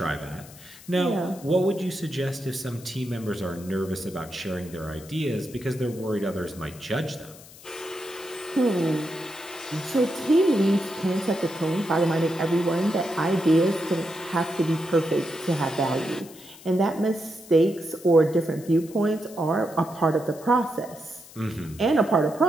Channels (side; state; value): left; noise; hiss, 20 dB below the sound